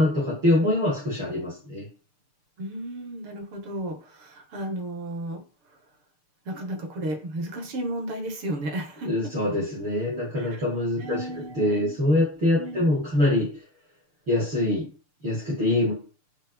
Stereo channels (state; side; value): late; left; 6.7 ms